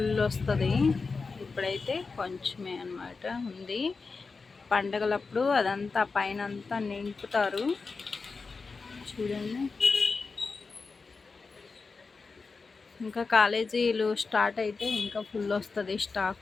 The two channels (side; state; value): right; quieter; 4.4 dB